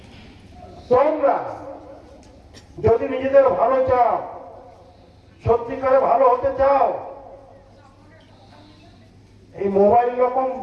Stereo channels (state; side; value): identical; both; correlation 1.00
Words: তোমরা যদি নিজেদের ভালো চাও, সত্যিকারে ভালো হতে চাও, এই